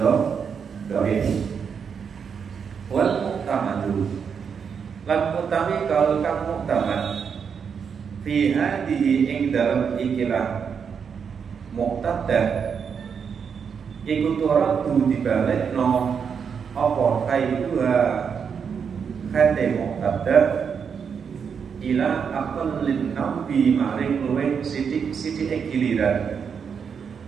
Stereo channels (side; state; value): left; quieter; 6.7 dB